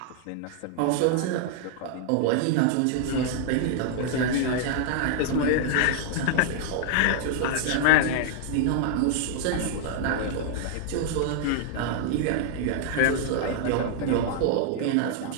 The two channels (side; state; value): both; different; correlation -0.01